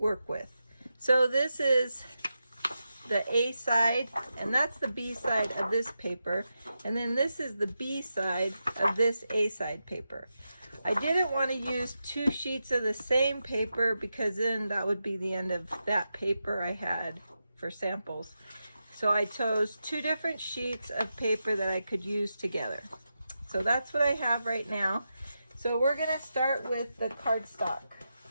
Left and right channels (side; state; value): both; inverted; correlation -0.88